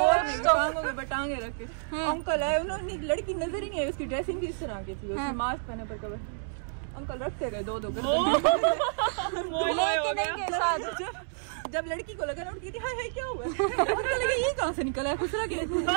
टांगों के बटांगे रख के। अंकल आए, उन्होंने लड़की नजर ही नहीं आई, उसकी ड्रेसिंग भी इस तरह की थी, उसने मास्क पहने पर कवर। अंकल रखते गए 2-2 कर। जब लड़की को लगा ना, उठती थी हाय हाय क्या हुआ? अंकल लगा ये कहाँ से निकला है खुसरा के?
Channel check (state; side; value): silent; left; digital silence